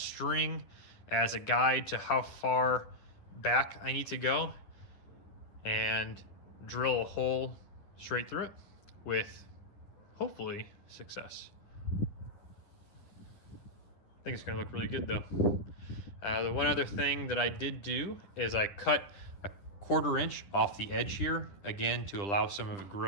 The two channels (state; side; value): late; right; 10 ms